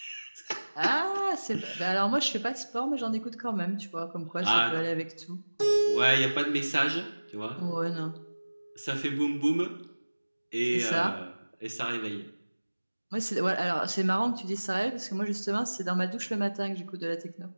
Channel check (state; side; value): inverted; both; correlation -1.00